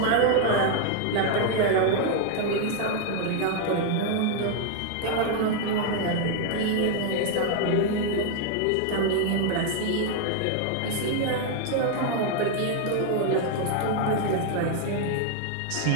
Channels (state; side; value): different; both; correlation 0.00